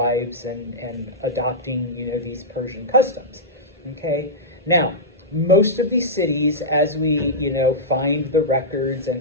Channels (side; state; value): both; normal; correlation -0.11